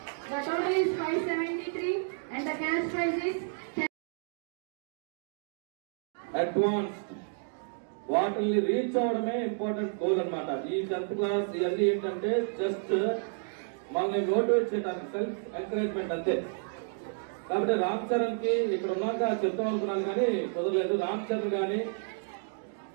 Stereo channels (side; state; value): left; silent; digital silence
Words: the total is 573 and the cash prize is 10. Advanced వాటిని reach అవడమే important goal అన్నమాట. ఈ 10th class ఇవన్నీ ఏంటంటే just మనల్ని motivate చేయడానికి, self encouragement అంతే. కాబట్టి రామ్ చరణ్ కి ఇక్కడ ఉన్నాక చెప్తాం అనుకున్నాను కానీ కుదరలేదు. రామ్ చరణ్ గాని